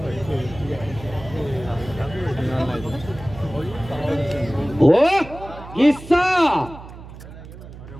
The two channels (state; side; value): noise; right; hum, 15 dB below the sound